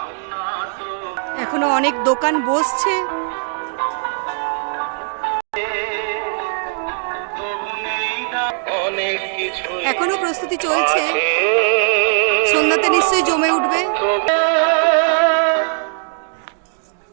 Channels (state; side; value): silent; left; digital silence